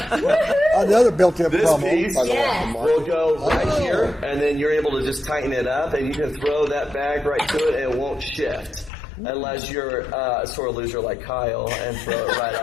Another built-in this promo. piece will go right here, and then you're able to just tighten it up, and you can throw that bag right to it, and it won't shift. Unless you're a sore loser like Kyle and throw it right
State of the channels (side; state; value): right; drops out; at 8.9 s